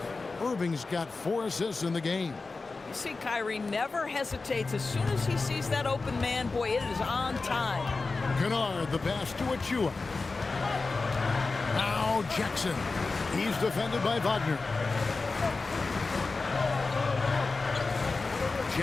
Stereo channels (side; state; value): right; quieter; 3.9 dB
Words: Irving's got 4 assists in the game. You see, Kyrie never hesitates. As soon as he sees that open man, boy, it is on time. Kennard, the pass to Achiuwa. Now Jackson. He's defended by Wagner.